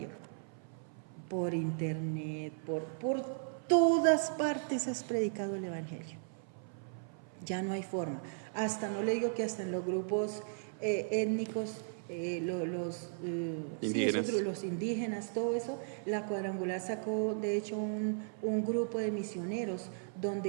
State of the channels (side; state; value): left; silent; 54 dB below the other